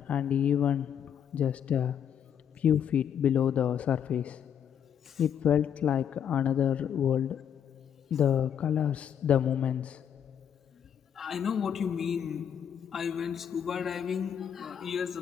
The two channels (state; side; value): quieter; right; 8.6 dB